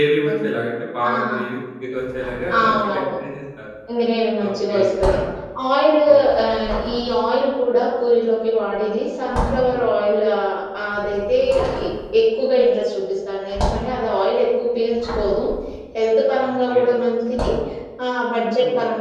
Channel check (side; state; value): both; identical; correlation 1.00